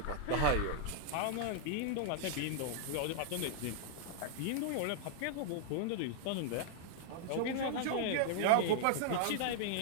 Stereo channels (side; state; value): both; different; correlation -0.01